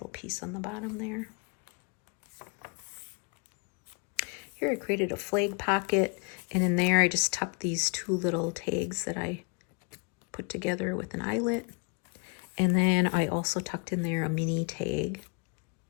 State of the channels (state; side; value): quieter; right; 35.3 dB